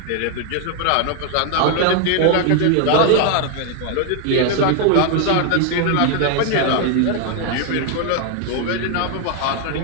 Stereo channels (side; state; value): both; different; correlation 0.00